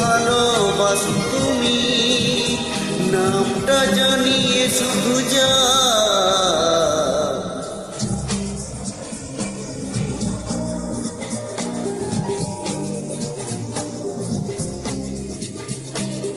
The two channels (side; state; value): both; identical; correlation 1.00